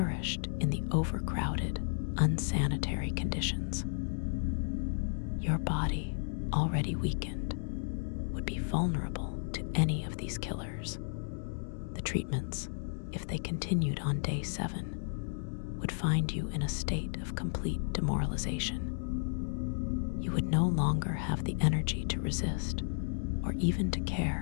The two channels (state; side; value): silent; right; digital silence